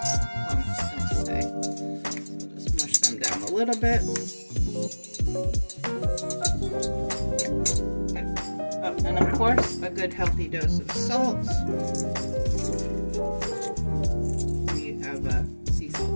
lumps don't stay. So just mush them down a little bit. Okay. Oh, and of course, a good healthy dose of salt. We have a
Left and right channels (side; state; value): both; inverted; correlation -1.00